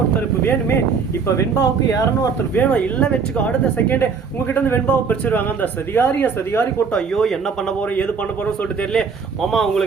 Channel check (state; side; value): quieter; left; 5.6 dB